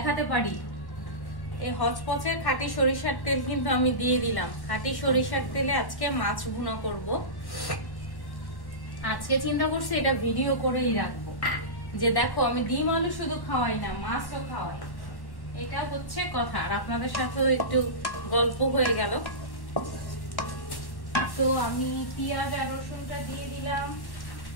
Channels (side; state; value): right; late; 1.1 ms